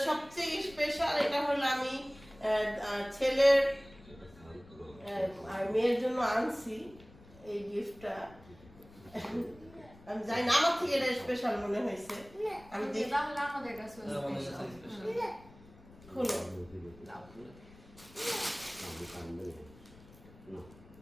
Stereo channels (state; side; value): noise; left; rumble, 22 dB below the sound